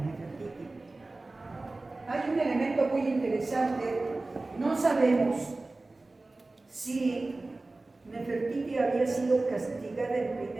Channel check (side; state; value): left; quieter; 3.2 dB